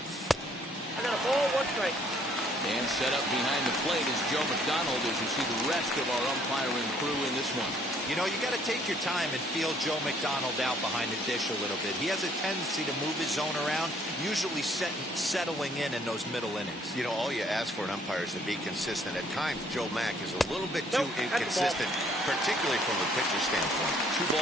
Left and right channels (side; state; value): both; normal; correlation 0.63